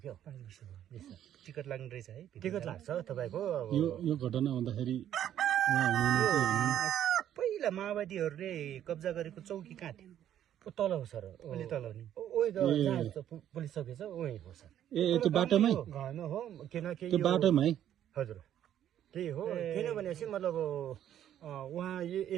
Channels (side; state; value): left; quieter; 10.9 dB